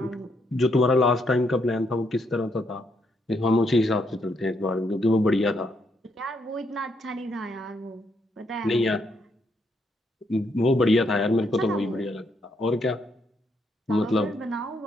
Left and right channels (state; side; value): normal; both; correlation 0.75